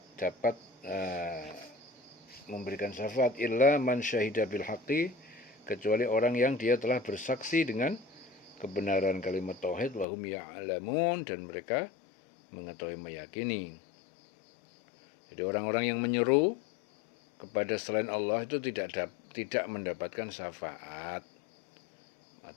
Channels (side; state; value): right; drops out; at 10.1 s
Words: dapat memberikan syafaat, illa man syahida bil haqqi, kecuali orang yang dia telah bersaksi dengan kebenaran kalimat tauhid, wa hum ya'lamun, dan mereka mengetahui, meyakini. Jadi orang-orang yang menyeru kepada selain Allah itu tidak mendapatkan syafaat